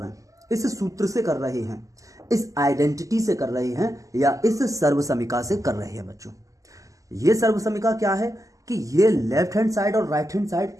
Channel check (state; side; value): late; left; 0.16 ms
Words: हैं, इस सूत्र से कर रहे हैं, इस आइडेंटिटी से कर रहे हैं, या इस सर्वसमीका से कर रहे हैं। बच्चों, ये सर्वसमीका क्या है कि ये लेफ्ट हैंड साइड और राइट हैंड साइड